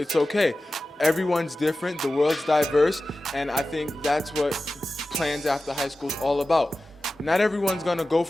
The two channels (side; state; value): both; normal; correlation 0.94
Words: okay. Everyone's different, the world's diverse, and I think that's what plans after high school is all about. Not everyone's going to go